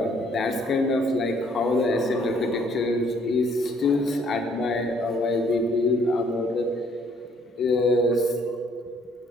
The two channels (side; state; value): both; normal; correlation 0.63